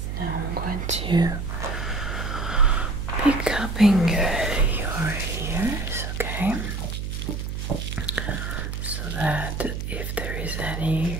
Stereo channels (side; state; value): right; noise; hum, 4 dB below the sound